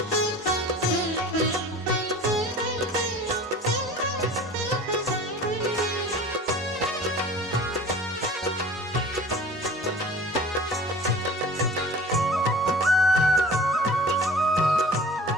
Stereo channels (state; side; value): normal; both; correlation 0.42